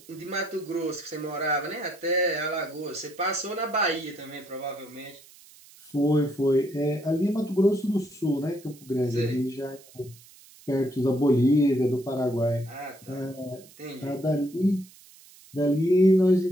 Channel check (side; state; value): right; noise; hiss, 24 dB below the sound